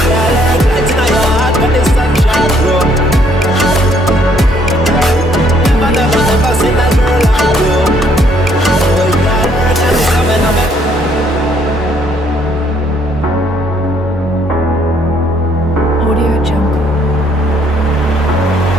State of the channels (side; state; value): both; normal; correlation 0.66